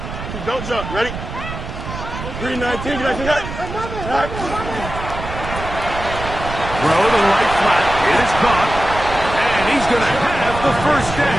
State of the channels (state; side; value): noise; right; rumble, 8 dB below the sound